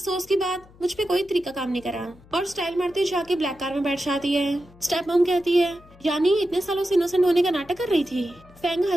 की बात मुझ पे कोई तरीका काम नहीं करा और स्टाइल मारते जाके ब्लैक कार में बैठ जाती है। स्टेप मॉम कहती है, यानी इतने सालों से इनोसेंट होने का नाटक कर रही थी। फैंग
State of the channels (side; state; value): left; noise; hum, 25 dB below the sound